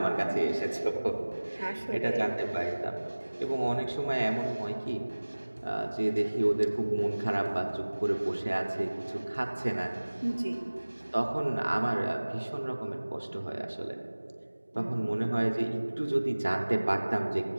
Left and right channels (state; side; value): inverted; both; correlation -1.00